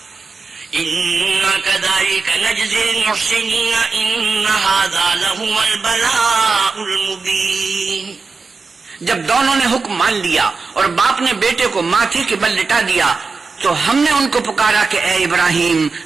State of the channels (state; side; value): quieter; left; 4.4 dB